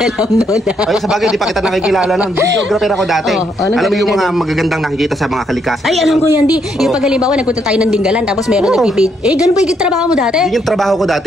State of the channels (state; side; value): normal; both; correlation 0.74